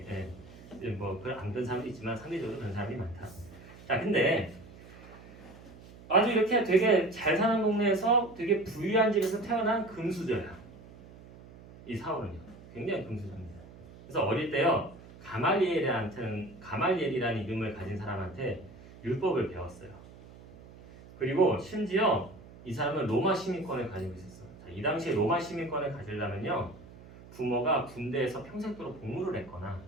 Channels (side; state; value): right; noise; hum, 19 dB below the sound